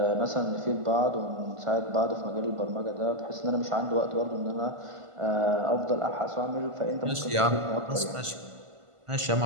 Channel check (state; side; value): late; left; 1.5 ms